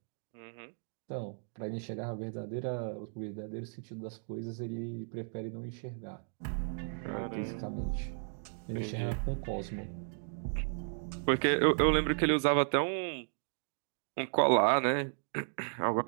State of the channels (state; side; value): silent; left; digital silence